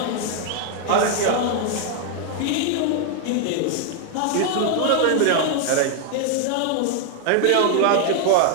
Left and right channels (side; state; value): both; different; correlation 0.00